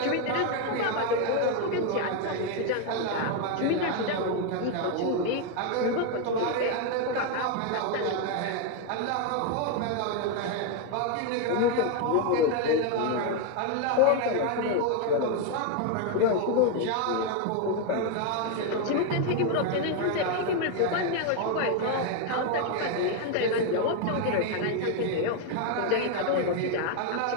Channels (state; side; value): different; both; correlation 0.01